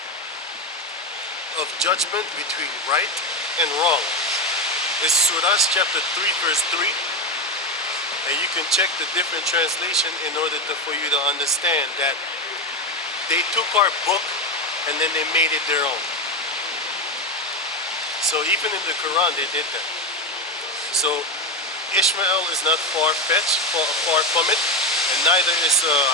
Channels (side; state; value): both; normal; correlation 0.14